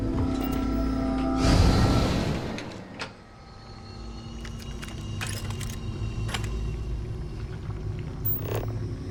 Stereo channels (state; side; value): identical; both; correlation 1.00